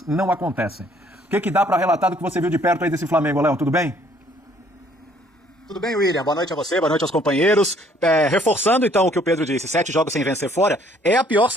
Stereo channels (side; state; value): both; normal; correlation 0.61